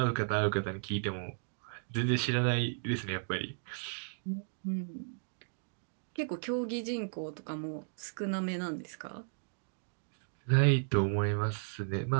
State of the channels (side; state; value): left; silent; digital silence